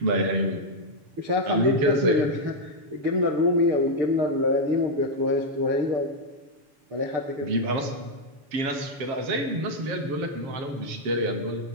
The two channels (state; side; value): late; left; 7.4 ms